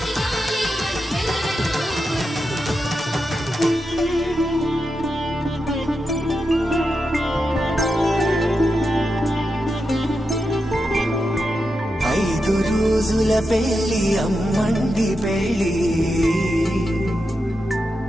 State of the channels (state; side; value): normal; both; correlation 0.87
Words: రోజుల పెళ్లి అమ్మండి పెళ్లి